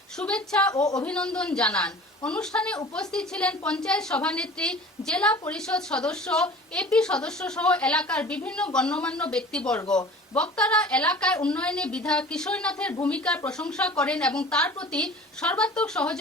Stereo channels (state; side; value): normal; both; correlation 0.43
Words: শুভেচ্ছা ও অভিনন্দন জানান। অনুষ্ঠানে উপস্থিত ছিলেন পঞ্চায়েত সভানেত্রী, জেলা পরিষদ সদস্য, এপি সদস্য সহ এলাকার বিভিন্ন গণ্যমান্য ব্যক্তিবর্গ। বক্তারা এলাকায় উন্নয়নে বিধায়ক কিশোর নাথের ভূমিকার প্রশংসা করেন এবং তার প্রতি সর্বাত্মক